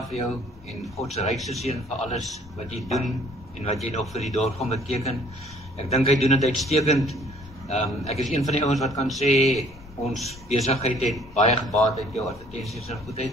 vir jou en God se rykste seën vir alles wat jy doen en wat jy nog vir die dorp gaan beteken. Ek dink hy doen dit uitstekend. Ek is een van die ouens wat kan sê ons besigheid het baie gebaat uit jou advertensies en goedheid.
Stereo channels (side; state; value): both; normal; correlation 0.58